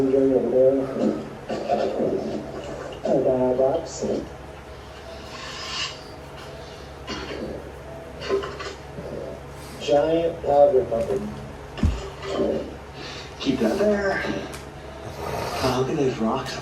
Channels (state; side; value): identical; both; correlation 1.00